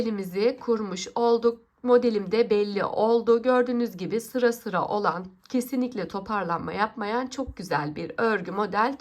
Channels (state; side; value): identical; both; correlation 1.00